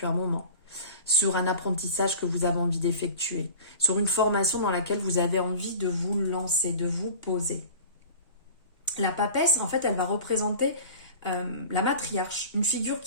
un moment. Sur un apprentissage que vous avez envie d'effectuer, sur une formation dans laquelle vous avez envie de vous lancer, de vous poser. La papesse, en fait, elle va représenter la matriarche, une figure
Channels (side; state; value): both; inverted; correlation -0.40